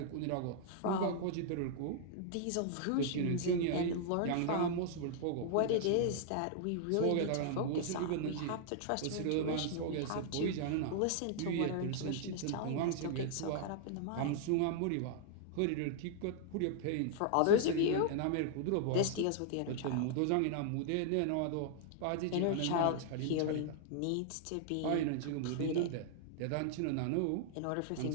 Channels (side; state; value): both; different; correlation 0.00